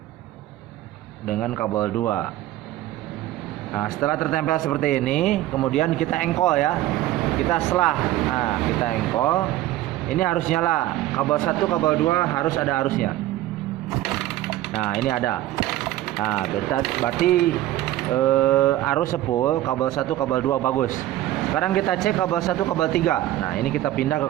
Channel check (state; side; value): quieter; left; 14.7 dB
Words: dengan kabel 2. Nah, setelah tertempel seperti ini, kemudian kita engkol ya. Kita selah. Nah, kita engkol. Ini harus nyala. Kabel 1, kabel 2 harus ada arusnya. Nah, ini ada. Nah, berarti arus sepul kabel 1, kabel 2 bagus. Sekarang kita cek kabel 1, kabel 3. Nah, ini kita pindah ke